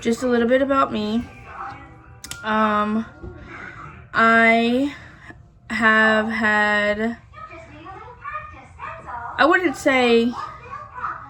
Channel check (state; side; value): identical; both; correlation 1.00